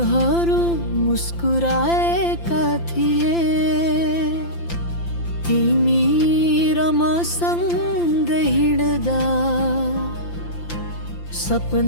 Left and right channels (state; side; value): late; right; 5.8 ms